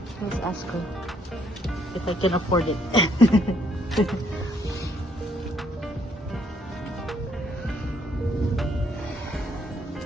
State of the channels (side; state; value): both; normal; correlation 0.68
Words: Let's ask her if I can afford it.